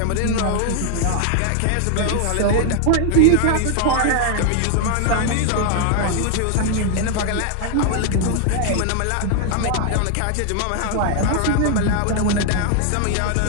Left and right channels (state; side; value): different; both; correlation 0.00